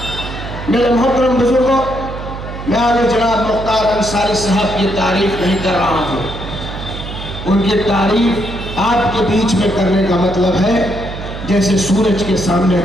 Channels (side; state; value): right; noise; hum, 9 dB below the sound